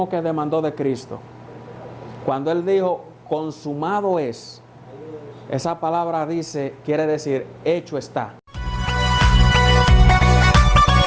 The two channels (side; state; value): both; identical; correlation 1.00